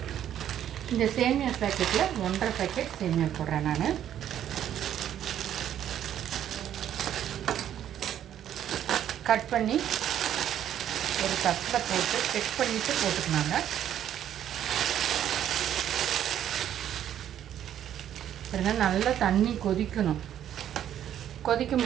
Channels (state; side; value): quieter; left; 10.6 dB